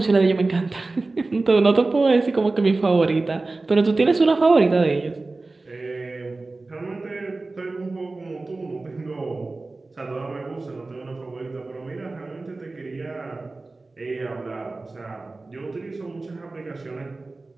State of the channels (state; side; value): quieter; left; 3.4 dB